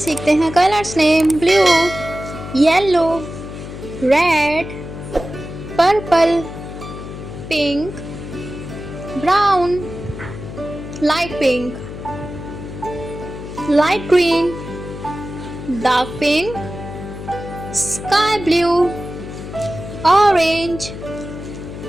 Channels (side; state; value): left; noise; hum, 10 dB below the sound